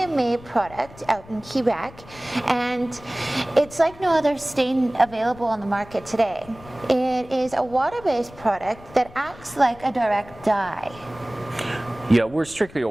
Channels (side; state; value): left; noise; rumble, 20 dB below the sound